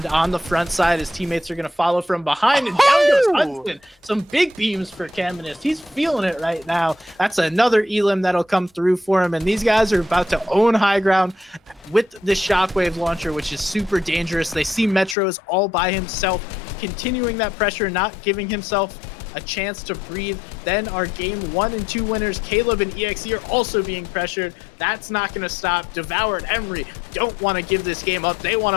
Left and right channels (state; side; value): drops out; right; at 15.2 s